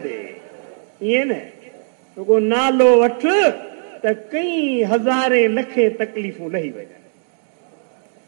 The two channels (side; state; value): left; silent; digital silence